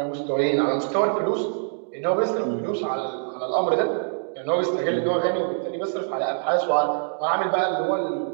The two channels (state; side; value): silent; left; digital silence